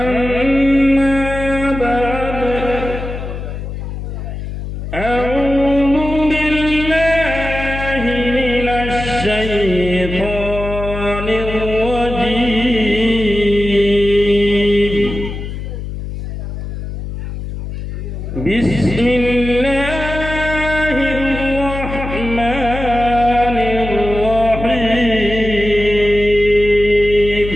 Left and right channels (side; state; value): left; noise; hum, 7 dB below the sound